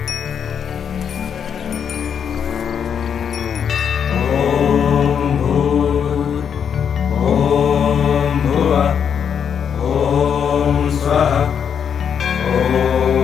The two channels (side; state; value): right; quieter; 7.7 dB